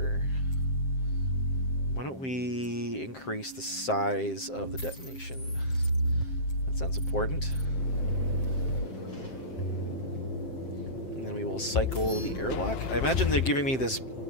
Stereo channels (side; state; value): right; late; 7.6 ms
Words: Why don't we increase the size of the detonation? That sounds important. And then we will cycle the airlock. I imagine they're giving me this